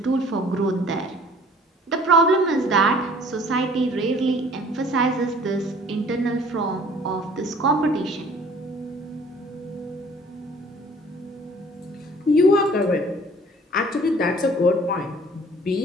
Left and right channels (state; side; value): normal; both; correlation 0.52